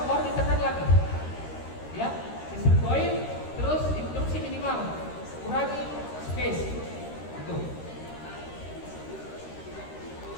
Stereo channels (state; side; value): late; right; 13 ms